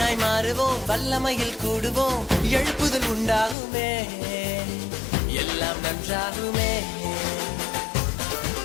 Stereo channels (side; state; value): right; drops out; at 3.6 s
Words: மாறுவோம், வல்லமையில் கூடுவோம், எழுப்புதல் உண்டாகுமே, எல்லாம் நன்றாகுமே.